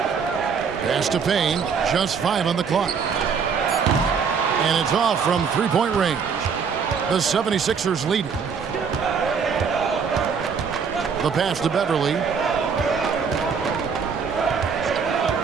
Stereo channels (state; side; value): quieter; left; 6.1 dB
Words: Pass to Payne, just 5 on the clock. And it's off from three-point range. The 76ers lead. The pass to Beverly.